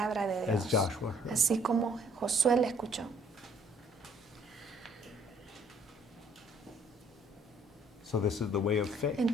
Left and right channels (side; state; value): both; normal; correlation 0.61